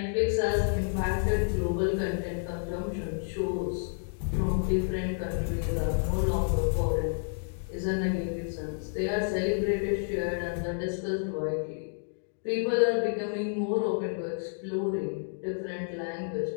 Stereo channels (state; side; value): silent; right; digital silence